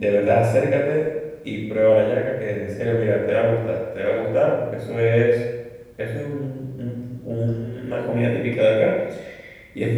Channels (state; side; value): identical; both; correlation 1.00